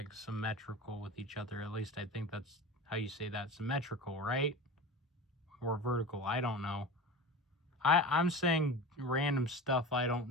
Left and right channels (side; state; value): both; normal; correlation 0.31